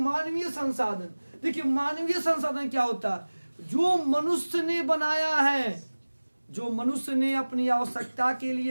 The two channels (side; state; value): both; inverted; correlation -1.00